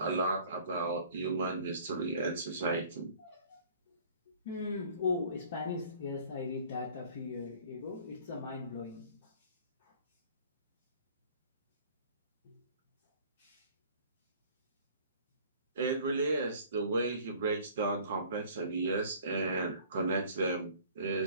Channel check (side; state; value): both; inverted; correlation -0.51